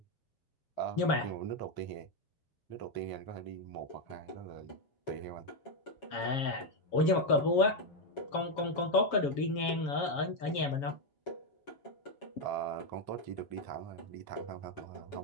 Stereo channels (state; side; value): late; right; 7.2 ms